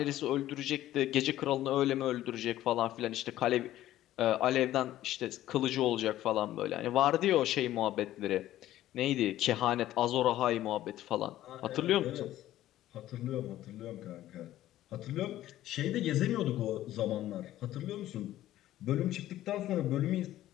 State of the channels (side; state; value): right; quieter; 13.9 dB